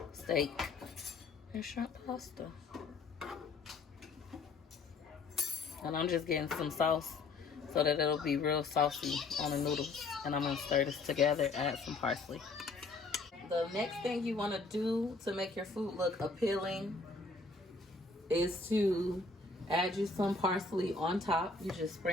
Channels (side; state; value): right; quieter; 3.8 dB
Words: Steak and shrimp pasta. And I'm just getting some sauce so that it'll be real saucy on the noodles. And I'm gonna stir this together, add some parsley. The next thing you wanna do to make your food look appealing is to add you some parsley on top. You just